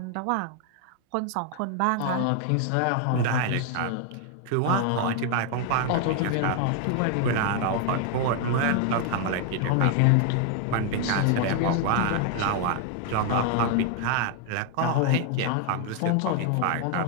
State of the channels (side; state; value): both; different; correlation 0.00